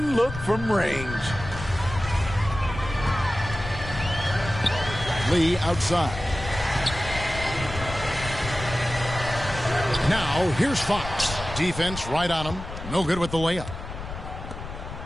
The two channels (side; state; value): left; noise; rumble, 10 dB below the sound